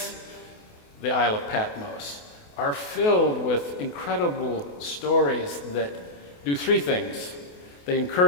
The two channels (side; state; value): right; late; 28 ms